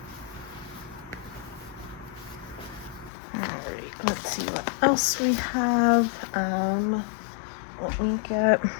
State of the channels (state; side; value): drops out; right; at 3.1 s